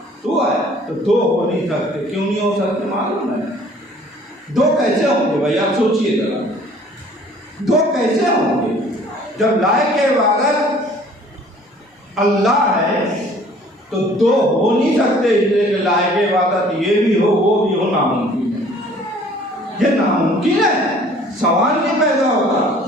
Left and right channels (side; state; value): both; normal; correlation 0.54